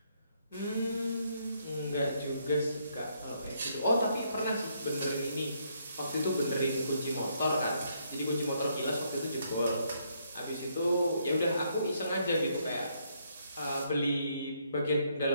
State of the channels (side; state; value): both; inverted; correlation -0.72